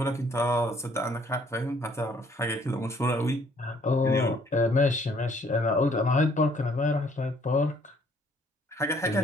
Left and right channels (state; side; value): normal; both; correlation 0.62